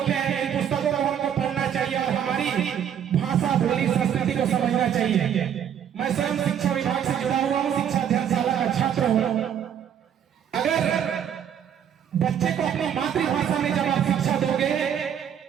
हैं। इन पुस्तकों को हमको पढ़ना चाहिए और हमारी भाषा, बोली, संस्कृति को समझना चाहिए। मैं स्वयं शिक्षा विभाग से जुड़ा हुआ हूँ, शिक्षा अध्ययनशाला का छात्र हूँ। अगर बच्चे को अपनी मातृभाषा में जब आप शिक्षा दोगे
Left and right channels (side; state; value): left; quieter; 9.0 dB